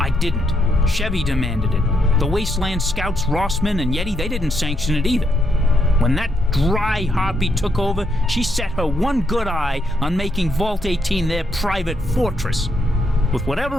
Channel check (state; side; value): normal; both; correlation 0.78